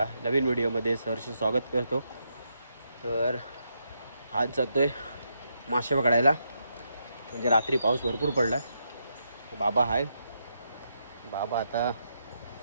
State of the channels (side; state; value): both; inverted; correlation -0.81